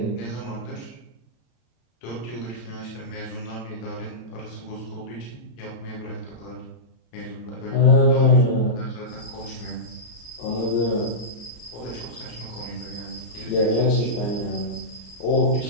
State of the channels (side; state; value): right; late; 34 ms